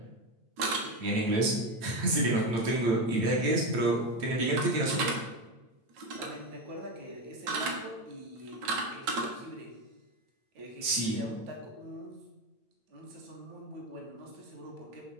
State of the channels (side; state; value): left; late; 8.9 ms